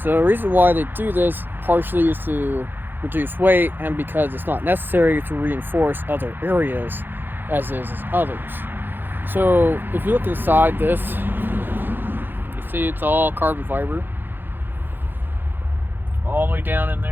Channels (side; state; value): left; late; 0.096 ms